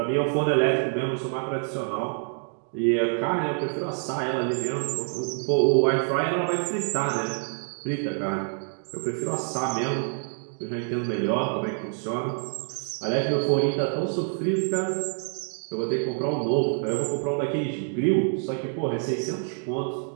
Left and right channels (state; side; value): silent; left; 60 dB below the other